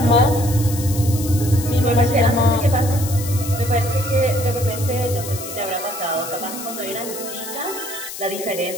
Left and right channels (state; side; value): noise; left; hiss, 10 dB below the sound